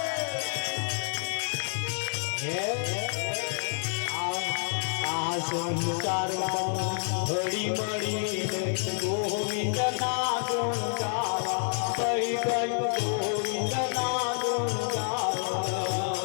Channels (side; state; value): right; silent; 59 dB below the other